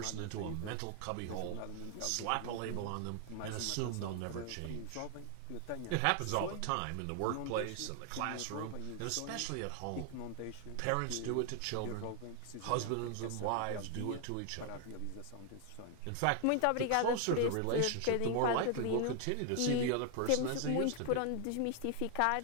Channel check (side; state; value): both; different; correlation 0.00